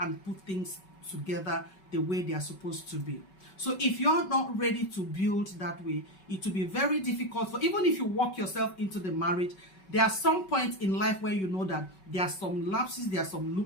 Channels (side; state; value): right; late; 5.3 ms